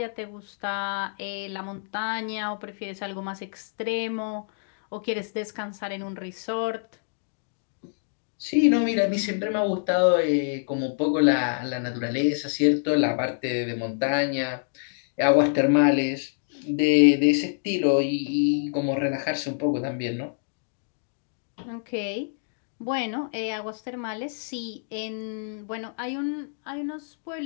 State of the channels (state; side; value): silent; right; digital silence